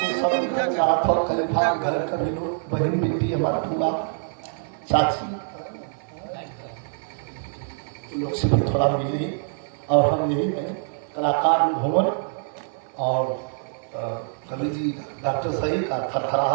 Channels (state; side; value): silent; left; 58 dB below the other